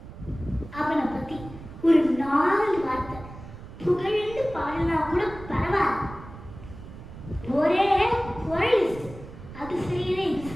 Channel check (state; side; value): noise; right; rumble, 15 dB below the sound